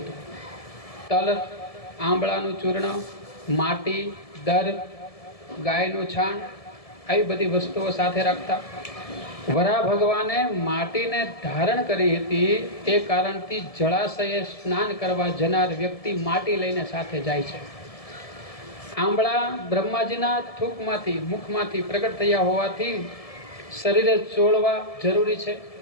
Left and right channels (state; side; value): late; right; 1.7 ms